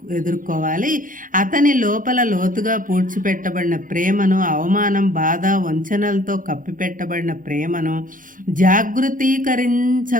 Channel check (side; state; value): left; late; 0.39 ms